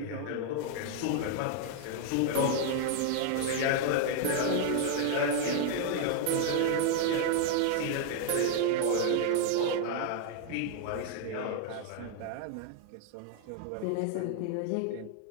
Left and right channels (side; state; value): both; different; correlation -0.01